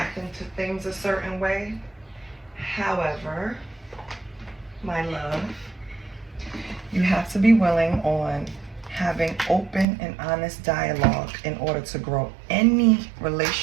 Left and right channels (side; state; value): left; drops out; at 9.9 s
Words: to things a certain way. However, my love, you have to be willing on having open and honest dialogue in order to grow any